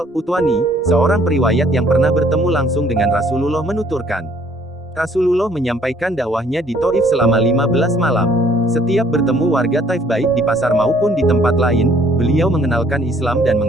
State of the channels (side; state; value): both; normal; correlation 0.61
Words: seorang periwayat yang pernah bertemu langsung dengan Rasulullah menuturkan, Rasulullah menyampaikan dakwahnya di Taif selama 15 malam. Setiap bertemu warga Taif baik di pasar maupun di tempat lain, beliau mengenalkan Islam dan